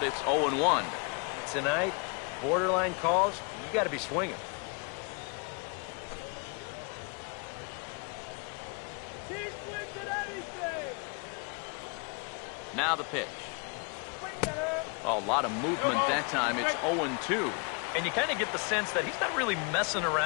it's 0-1. Tonight, borderline calls, you got to be swinging. He swings at anything. Now the pitch. A lot of movement that time. It's 0-2. And you kind of get the sense that he's not really messing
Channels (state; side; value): quieter; right; 35.1 dB